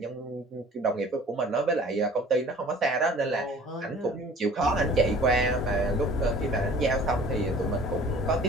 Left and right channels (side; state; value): both; normal; correlation 0.48